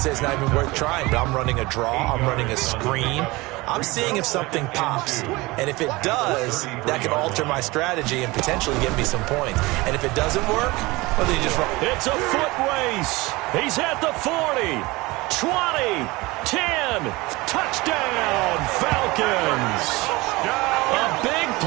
it's not even worth trying, but I'm running a draw. I'm running a screen. I'm seeing if something pops. And if it does, that can alter my strategy and potentially get me some points. And if it doesn't work, well, then you just run. It's a foot race. He's at the 40, 20, 10. Touchdown, Falcons. A big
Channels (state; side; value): quieter; left; 22.1 dB